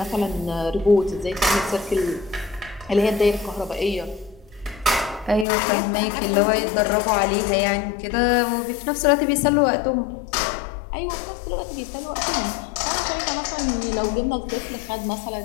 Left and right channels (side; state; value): right; drops out; at 5.5 s